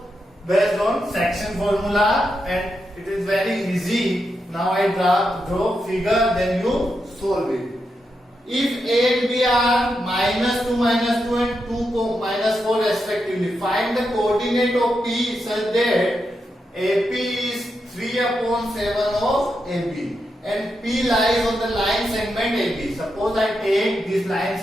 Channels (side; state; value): both; normal; correlation 0.85